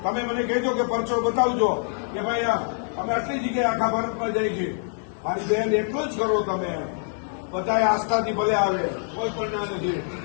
તમે મને કહેજો કે પરચો બતાવજો કે ભાઈ અમે આટલી જગ્યાએ આખા ભારતમાં જઈ છીએ. મારી બેન એટલું જ કરો તમે. બધા આસ્થાથી ભલે આવે, કોઈ પણ ના નથી.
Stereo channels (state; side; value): silent; right; 59 dB below the other